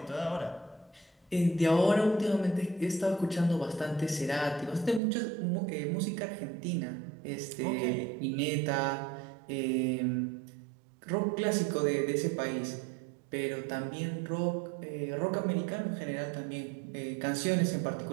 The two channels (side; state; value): left; drops out; at 5.0 s